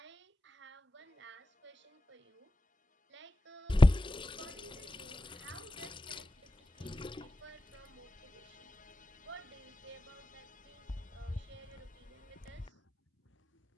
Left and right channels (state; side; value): normal; both; correlation 0.94